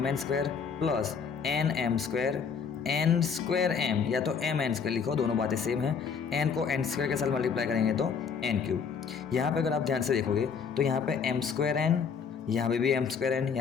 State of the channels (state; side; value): quieter; right; 6.3 dB